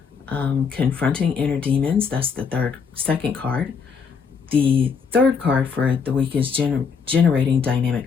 confronting inner demons. That's the second card. The third card for the week is generating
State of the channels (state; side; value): quieter; right; 5.9 dB